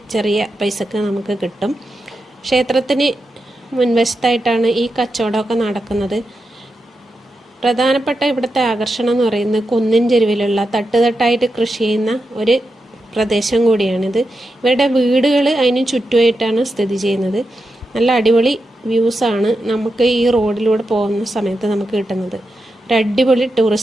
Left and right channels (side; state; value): both; normal; correlation 0.88